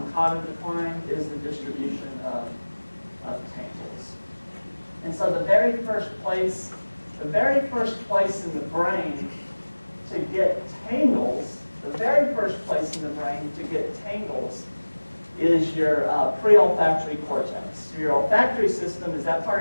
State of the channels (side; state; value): both; inverted; correlation -1.00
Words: cognitive decline is the distribution of tangles. And so the very first place in the brain to get tangles, is your pre-olfactory cortex. Your olfactory system is that